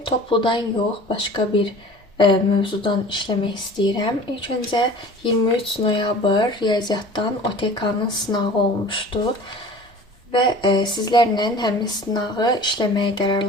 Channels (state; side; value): normal; both; correlation 0.43